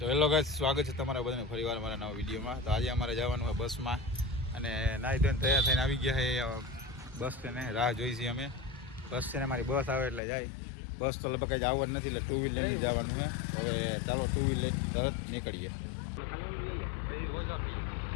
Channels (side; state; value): right; drops out; at 10.2 s